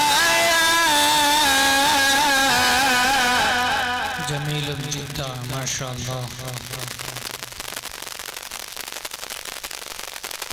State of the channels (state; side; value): identical; both; correlation 1.00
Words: لآيات جميل جدا ما شاء الله